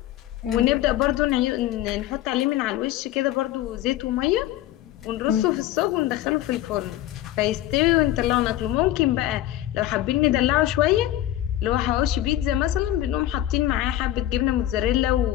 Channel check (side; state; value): right; quieter; 13.8 dB